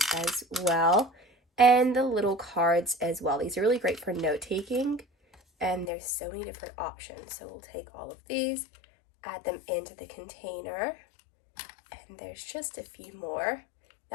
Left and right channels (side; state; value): right; drops out; at 5.9 s